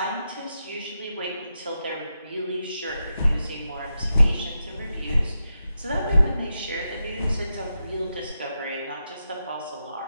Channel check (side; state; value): both; inverted; correlation -0.87